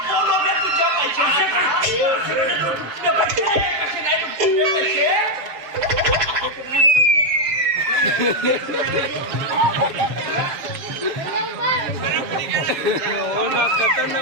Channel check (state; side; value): late; left; 6.8 ms